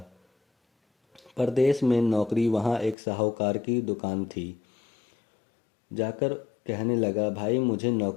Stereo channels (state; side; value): drops out; right; at 3.0 s